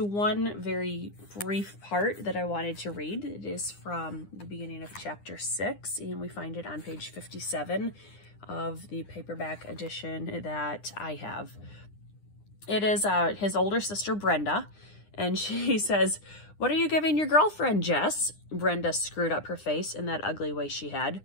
very brief part that I wanted to read. It is from the beginning of chapter 6, and we find it on page 57. of the paperback edition that I have. It is his older sister, Brenda, and she says, "What are you giving your girlfriend, Jess?" Brenda screwed up her face in that ugly way she had.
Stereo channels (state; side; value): late; right; 9.9 ms